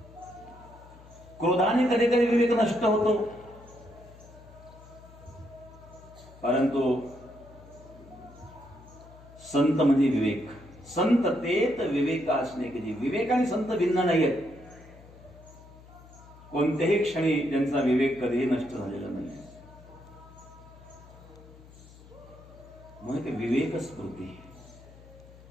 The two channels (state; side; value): noise; left; hum, 21 dB below the sound